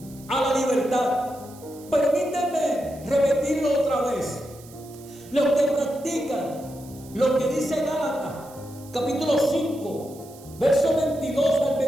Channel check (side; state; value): right; noise; hiss, 22 dB below the sound